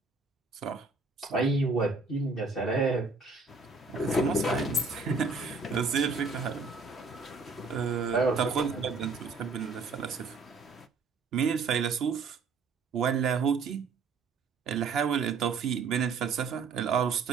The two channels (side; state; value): left; quieter; 4.4 dB